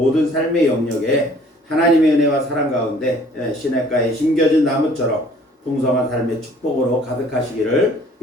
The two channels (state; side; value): normal; both; correlation 0.55